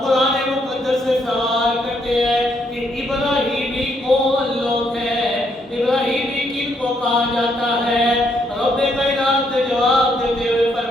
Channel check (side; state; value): both; normal; correlation 0.73